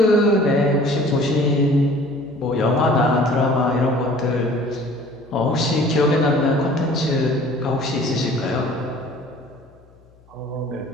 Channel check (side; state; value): left; noise; hum, 29 dB below the sound